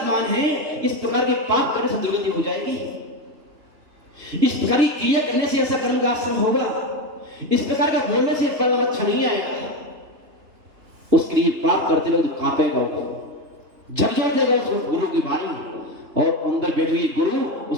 है, इस प्रकार के पाप करने से दुर्गति हो जाएगी। इस प्रकार की क्रिया करने से ऐसा कर्म का आश्रम होगा, इस प्रकार का बोलने से परिणाम अच्छा नहीं आएगा। उसके लिए पाप करते वक्त कांपेगा, झकझोर जाएगा उस गुरु की वाणी, और अंदर बैठे हुए गुरु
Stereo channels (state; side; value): late; left; 3.3 ms